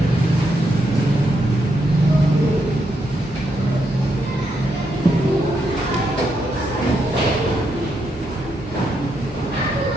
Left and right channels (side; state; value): both; normal; correlation 0.80